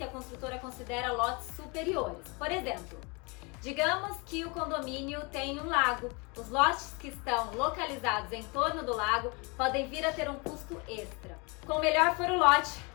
a construtora considera lotes superiores. Por exemplo, digamos que o condomínio tem um lago. Os lotes que estão localizados em torno do lago podem vir a ter um custo extra. Quanto melhor for o lote,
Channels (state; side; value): quieter; right; 29.5 dB